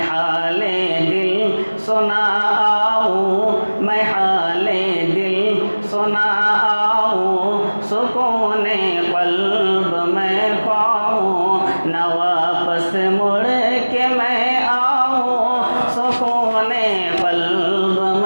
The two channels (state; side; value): inverted; both; correlation -1.00